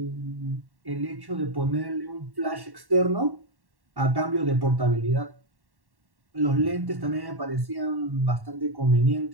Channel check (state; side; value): late; left; 1.1 ms